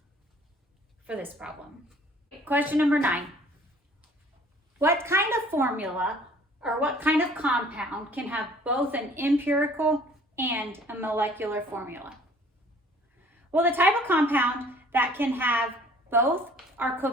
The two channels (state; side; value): normal; both; correlation 0.54